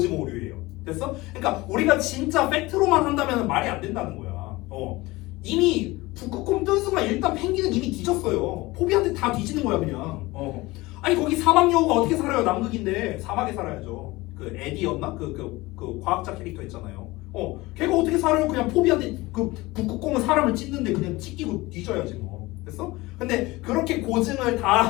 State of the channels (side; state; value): right; quieter; 20.8 dB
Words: 됐어? 그러니까 우리가 진짜 팩트로만 한다면 말이 안 된다는 거야. 이미 북극곰 뜬 순간 일단 펭귄은 이미 뒤졌어요. 포비한테 다 뒤지는 거야 그냥. 아니 거기 사막 여우가 어떻게 살아요? 남극인데 사막에 살아야죠. 그 에디였나? 그 과학자 캐릭터 있잖아요. 걔가 어떻게 살아요? 그냥 포비한테 그 북극곰은 사람을 찢는데 그냥 찢기고 뒤져야지 뭐. 됐어? 근데 그렇게 고증을 다